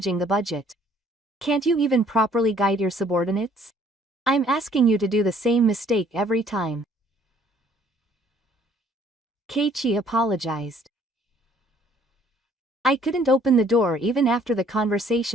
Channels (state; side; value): normal; both; correlation 0.60